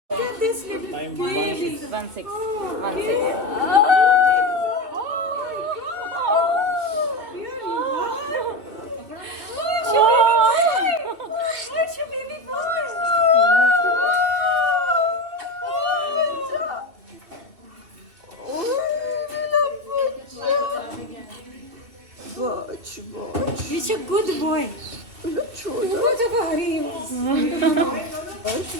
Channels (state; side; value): late; left; 2.5 ms